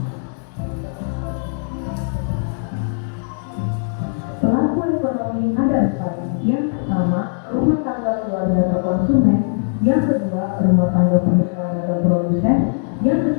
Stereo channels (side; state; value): right; silent; digital silence